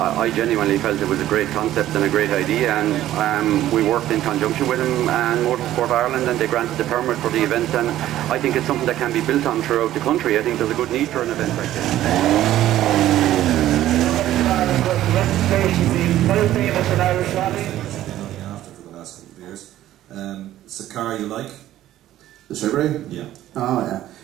genuinely felt it was a great concept and a great idea, and we worked in conjunction with them and Motorsport Ireland, and they granted the permit for the event, and I think it's something that can be built on throughout the country. I think there's a good need for an event like this. It's a car you like? The Subaru? Yeah. Oh yeah.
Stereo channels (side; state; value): left; quieter; 13.4 dB